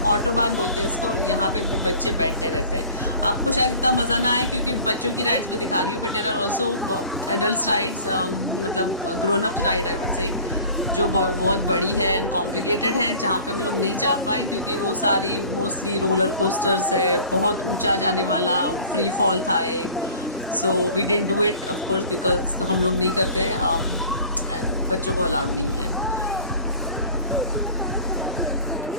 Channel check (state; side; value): inverted; both; correlation -0.45